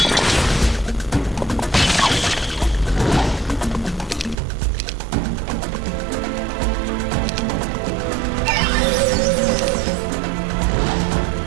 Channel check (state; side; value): drops out; left; at 4.4 s